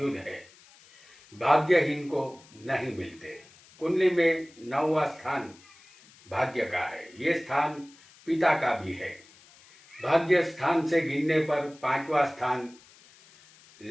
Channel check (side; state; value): left; noise; hiss, 26 dB below the sound